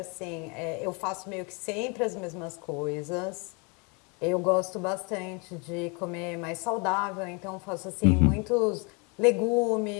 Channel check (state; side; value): quieter; right; 31.8 dB